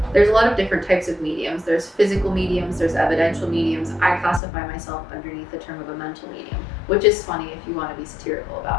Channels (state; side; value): drops out; right; at 4.4 s